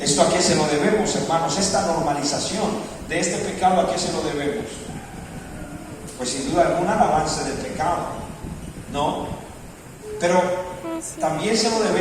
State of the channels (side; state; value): both; identical; correlation 1.00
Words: a qué se lo debemos, hermanos? Esta normalización de este pecado, ¿a qué se lo debemos? Pues sin duda alguna al avance del pecado, ¿no? Pero también se lo